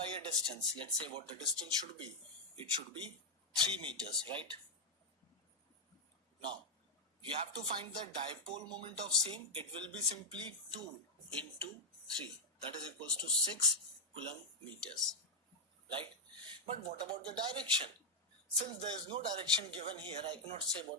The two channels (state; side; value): normal; both; correlation 0.00